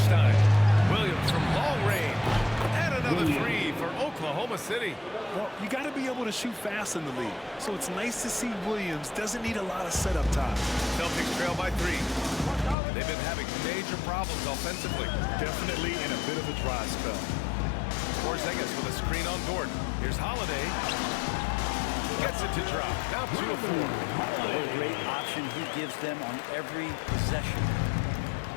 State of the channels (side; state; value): right; drops out; at 12.8 s